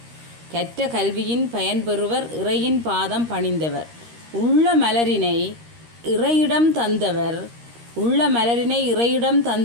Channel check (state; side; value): late; left; 13 ms